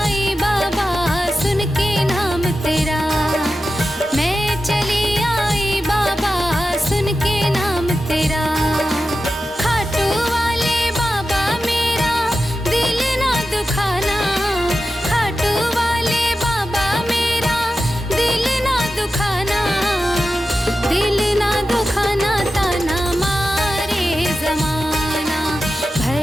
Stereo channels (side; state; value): both; normal; correlation 0.92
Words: बाबा सुन के नाम तेरा, मैं चली आई बाबा सुन के नाम तेरा, खाटू वाले बाबा मेरा दिल ना दुखाना, खाटू वाले बाबा मेरा दिल ना दुखाना, दिल ना दुखाना ताना मारे जमाना,